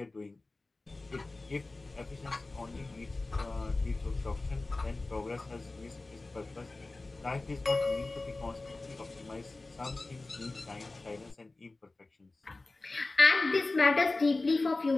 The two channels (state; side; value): quieter; right; 3.2 dB